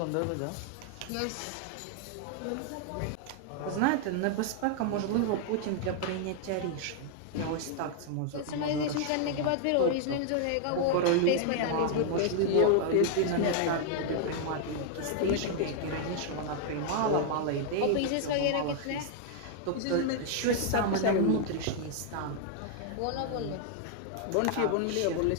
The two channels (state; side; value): different; both; correlation 0.00